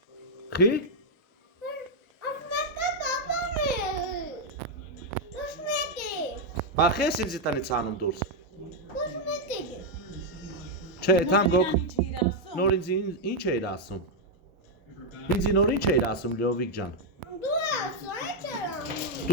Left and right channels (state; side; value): normal; both; correlation -0.01